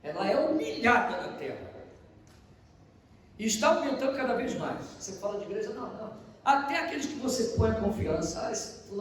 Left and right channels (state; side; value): identical; both; correlation 1.00